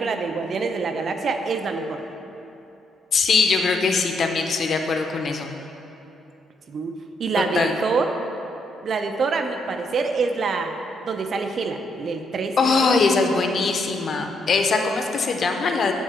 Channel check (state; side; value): normal; both; correlation 0.75